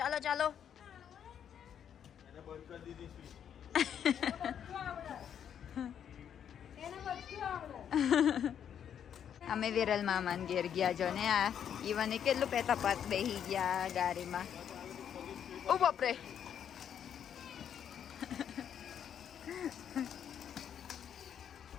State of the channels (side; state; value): right; quieter; 8.8 dB